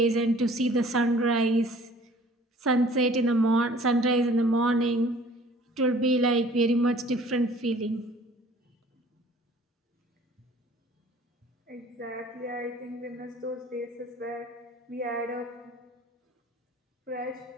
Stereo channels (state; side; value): normal; both; correlation 0.52